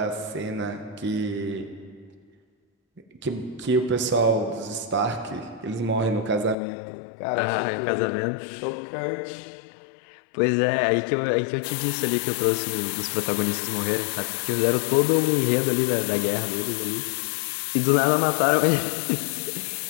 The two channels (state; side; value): drops out; right; at 6.6 s